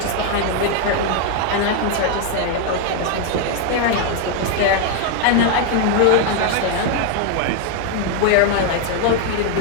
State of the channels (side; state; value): both; different; correlation 0.01